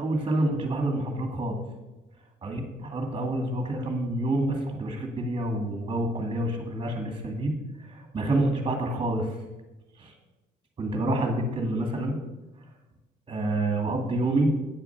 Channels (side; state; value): both; normal; correlation 0.69